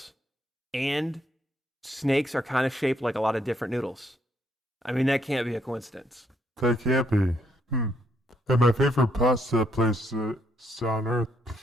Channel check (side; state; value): both; normal; correlation 0.73